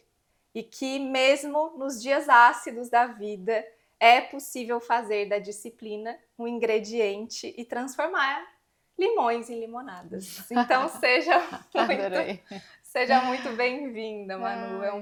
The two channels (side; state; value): both; identical; correlation 1.00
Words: E que mesmo nos dias ácidos da vida é possível fazer da disciplina um ingrediente e transformar limões em limonadas. Então seja muito bem-vinda, Manu. É um